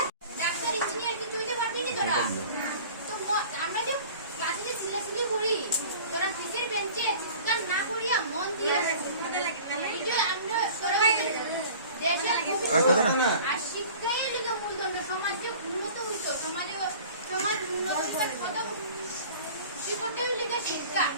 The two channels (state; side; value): inverted; both; correlation -0.44